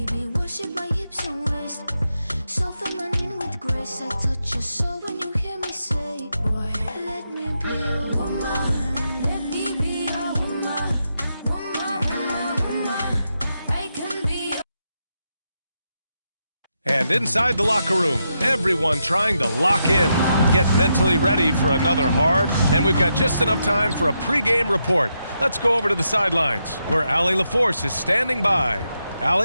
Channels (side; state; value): both; inverted; correlation -0.83